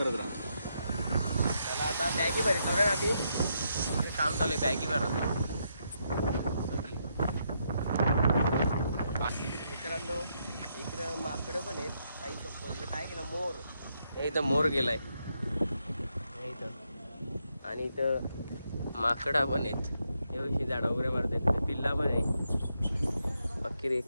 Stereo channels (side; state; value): both; inverted; correlation -0.79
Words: राहा. चला आता बॅगी भरत ना आधी काम चालू आहे. बॅगी भरत मित्रांनो. इकडं माकडं पण आहेत. आई चप्पल काय केलं मोर. इथं मोर गेलाय इथं. आणि इथं माकडा पण आहेत. एवढी झाडा वगैरे मारतात. पिल्ला पण आहे. पक्की